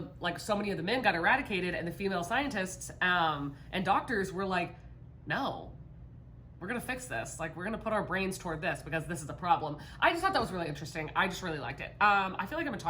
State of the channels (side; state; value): both; identical; correlation 1.00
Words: like so many of the men got eradicated, and the female scientists and doctors were like, no, we're gonna fix this. Like, we're gonna put our brains toward this because this is a problem. I just thought that was really interesting. I just really liked it. I feel like I've been